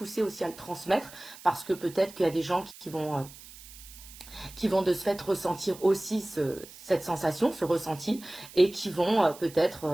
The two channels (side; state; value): right; noise; hiss, 18 dB below the sound